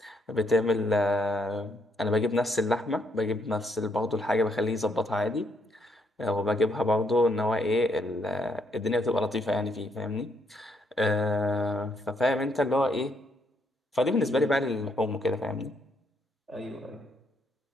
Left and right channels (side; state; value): both; normal; correlation 0.74